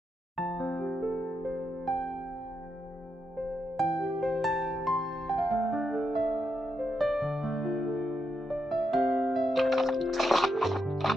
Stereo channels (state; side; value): normal; both; correlation 0.84